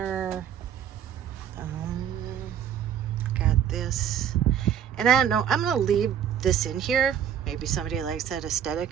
Got this. And I don't know, I'm gonna leave this in here. Maybe somebody likes that aesthetic.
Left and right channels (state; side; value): quieter; left; 9.2 dB